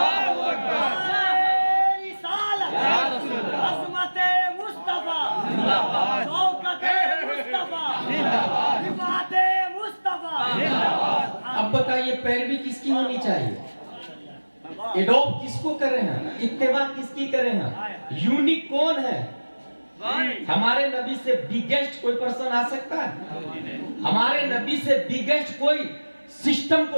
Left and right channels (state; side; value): inverted; both; correlation -1.00